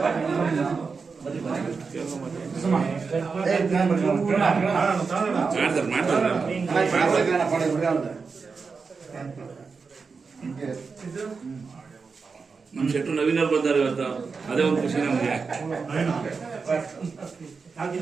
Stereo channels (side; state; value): left; quieter; 4.9 dB